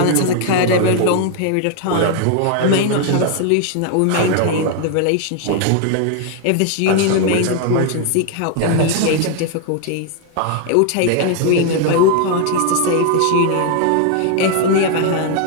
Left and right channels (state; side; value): different; both; correlation 0.00